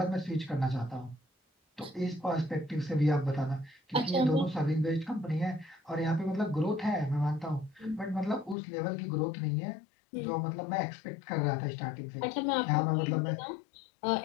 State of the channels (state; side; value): drops out; right; at 8.6 s